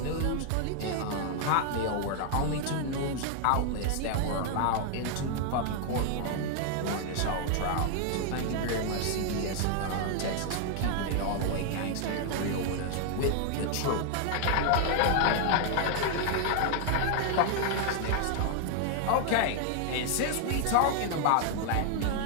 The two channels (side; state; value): both; different; correlation 0.00